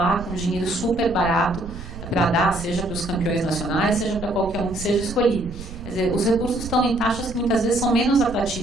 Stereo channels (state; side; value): noise; right; rumble, 12 dB below the sound